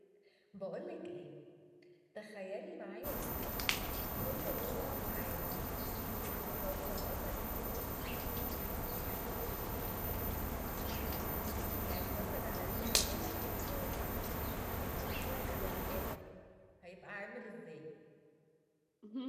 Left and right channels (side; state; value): both; identical; correlation 1.00